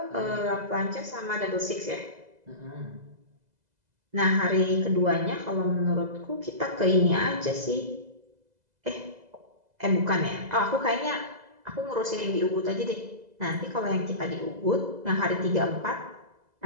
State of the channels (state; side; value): late; left; 2.0 ms